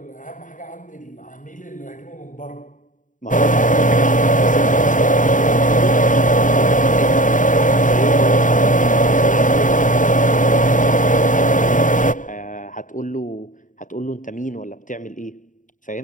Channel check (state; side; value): late; right; 0.38 ms